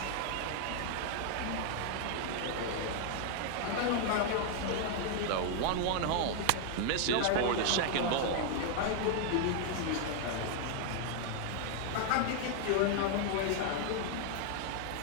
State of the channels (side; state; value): both; different; correlation 0.00